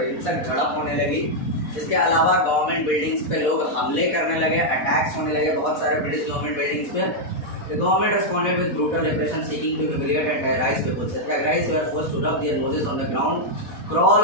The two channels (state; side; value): late; right; 4.1 ms